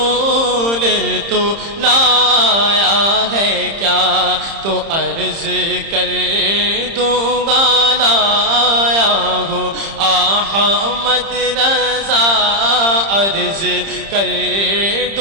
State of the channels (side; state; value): left; late; 30 ms